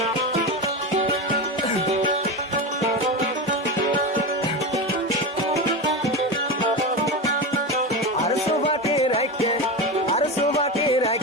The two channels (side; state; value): both; normal; correlation 0.19